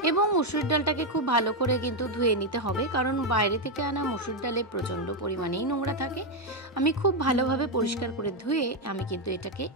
এবং মুসুরির ডালটাকে খুব ভালো করে কিন্তু ধুয়ে নিতে হবে, কারণ বাইরে থেকে আনা মুসুর ডালে প্রচণ্ড পরিমাণেই নোংরা থাকে। আমি খুব ভালোভাবে পরিষ্কার করে ধুয়ে আমি কিন্তু এটাকে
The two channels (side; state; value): both; normal; correlation 0.03